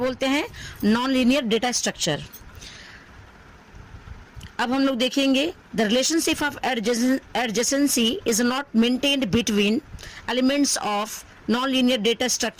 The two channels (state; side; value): identical; both; correlation 1.00